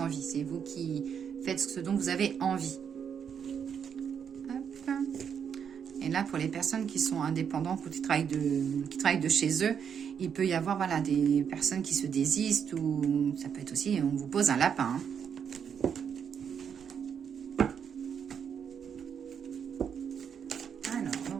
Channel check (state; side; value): quieter; left; 7.5 dB